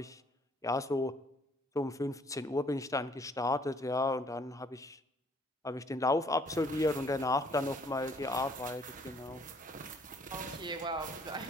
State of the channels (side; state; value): both; normal; correlation 0.61